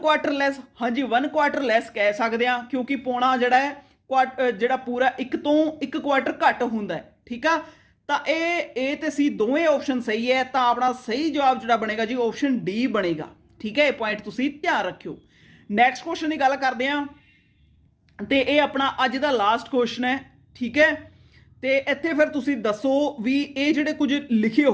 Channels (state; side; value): identical; both; correlation 1.00